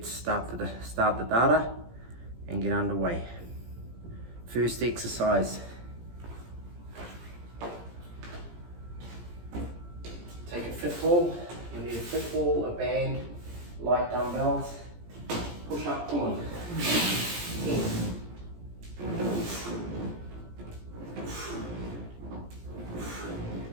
start the data and get underway. First exercise. Take a fit ball. You need a fit ball, a band, light dumbbells. Push up, pull in. 10.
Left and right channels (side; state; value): left; late; 17 ms